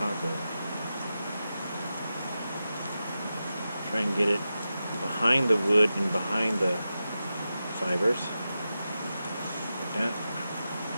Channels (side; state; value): both; inverted; correlation -0.91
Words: Try and get it behind the wood and behind the fibers. Like that.